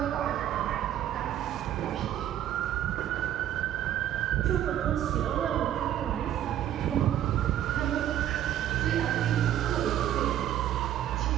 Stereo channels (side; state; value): left; quieter; 11.5 dB